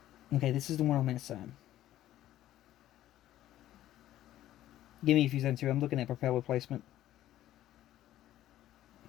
Okay, this is the one on that side. Give me a few seconds here. I'm looking at propeller placement.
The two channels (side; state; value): right; quieter; 13.4 dB